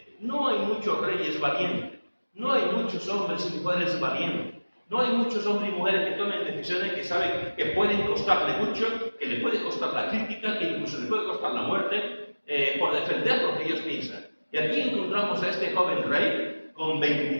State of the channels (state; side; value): inverted; both; correlation -1.00